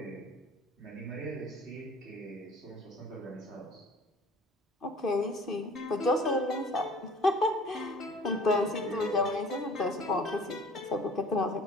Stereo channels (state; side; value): normal; both; correlation 0.48